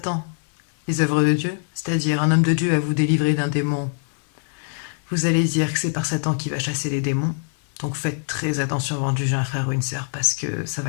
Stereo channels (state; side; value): silent; right; digital silence